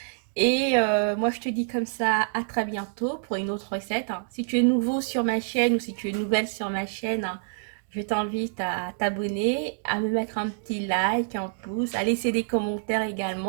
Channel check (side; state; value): left; silent; digital silence